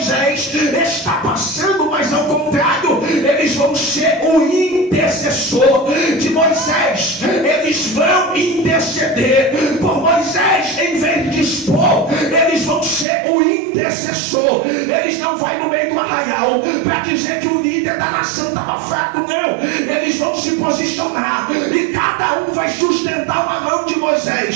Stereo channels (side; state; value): left; drops out; at 13.1 s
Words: está passando, mas ao contrário, eles vão ser o intercessor de Moisés. Eles vão interceder por Moisés. Em vez de expor, eles vão ser o intercessor. Eles não vão no meio do arraial para dizer que o líder da nação estava fraco, não. Eles vão se posicionar, e cada um vai sustentar uma mão de